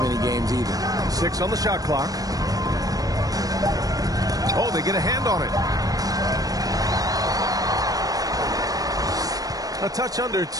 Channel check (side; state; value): left; late; 0.18 ms